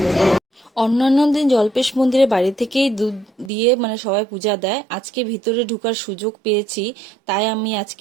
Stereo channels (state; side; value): drops out; left; at 3.5 s